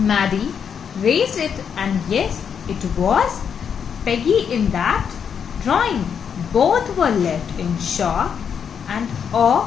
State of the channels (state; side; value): quieter; right; 7.3 dB